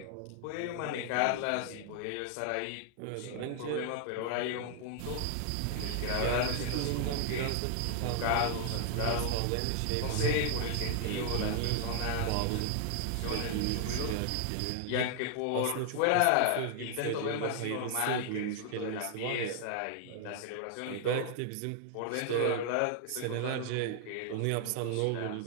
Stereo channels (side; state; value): both; different; correlation 0.00